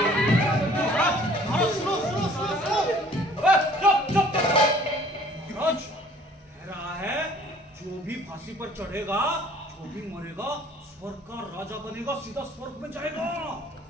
रहा है जो भी फांसी पर चढ़ेगा, जो भी मरेगा, स्वर्ग का राजा बनेगा, सीधा स्वर्ग में जाएगा।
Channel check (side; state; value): both; normal; correlation 0.54